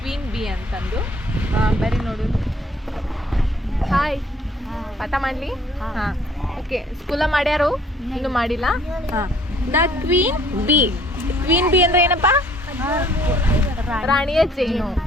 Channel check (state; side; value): normal; both; correlation 0.59